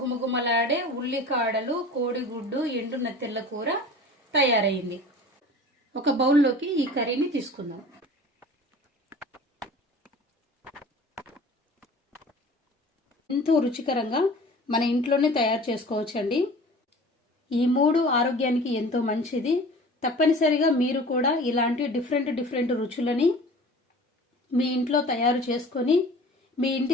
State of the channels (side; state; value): both; normal; correlation 0.42